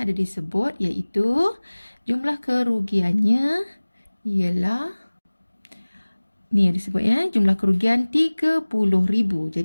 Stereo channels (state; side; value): inverted; both; correlation -1.00